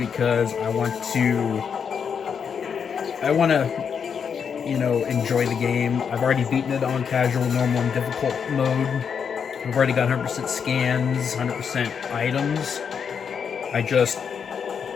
I want to, you know, enjoy the game. I've already beaten it on casual, normal, and difficult mode. I've already got 100% scans, 100% items. I just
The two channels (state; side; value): quieter; right; 6.8 dB